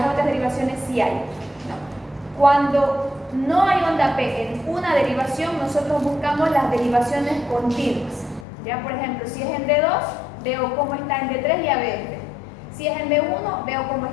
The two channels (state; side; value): drops out; right; at 8.5 s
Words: otras derivaciones sí hay. No. Cuando no hay onda P en una derivación, nosotros buscamos las derivaciones continuas. Ya, por ejemplo, si es en D2, veo cómo está en D3 y AB. Si es en B1, veo cómo